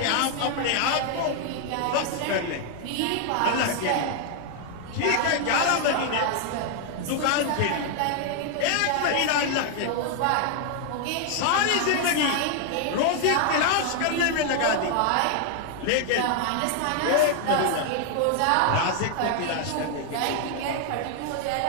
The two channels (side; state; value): both; different; correlation 0.00